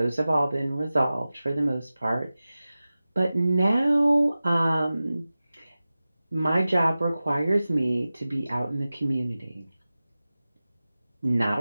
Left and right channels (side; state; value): both; inverted; correlation -0.96